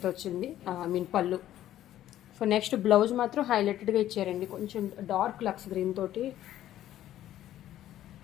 వచ్చింది, పళ్ళు. సో నెక్స్ట్ బ్లౌజ్ మాత్రం హైలైటెడ్గా ఇచ్చారండి, కొంచెం డార్క్ లక్స్ గ్రీన్ తోటి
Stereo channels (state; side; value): quieter; right; 12.7 dB